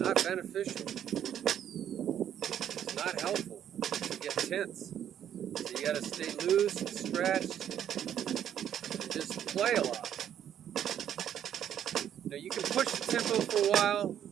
beneficial. It's not helpful to get tense. So you got to stay loose and stretched and just play a lot. Now you can push the tempo for a while,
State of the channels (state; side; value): quieter; left; 9.9 dB